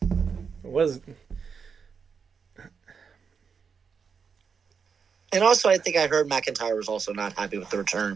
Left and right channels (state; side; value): quieter; left; 6.0 dB